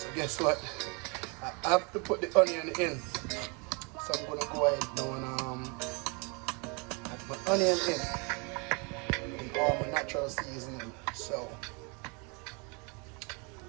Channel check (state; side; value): quieter; left; 32.1 dB